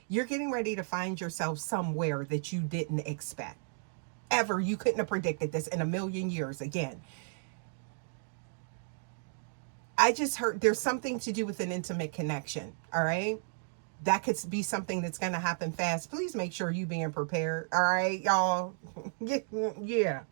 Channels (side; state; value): left; silent; digital silence